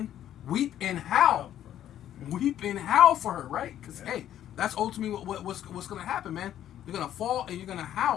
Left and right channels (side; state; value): right; quieter; 11.3 dB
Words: weep and howl. Weep and howl for her, right? Because, Yeah. hey, that's ultimately what's going to happen, man. You're going to fall and you're going to